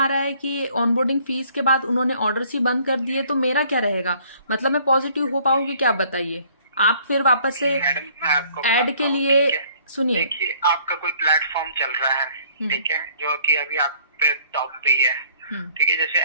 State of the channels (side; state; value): both; inverted; correlation -0.59